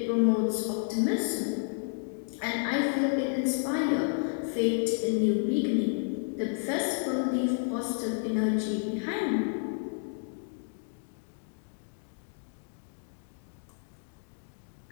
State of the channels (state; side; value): silent; right; digital silence